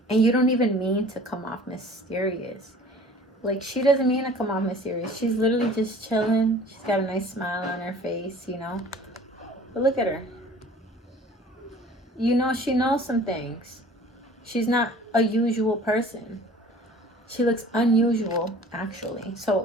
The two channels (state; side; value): normal; both; correlation 0.47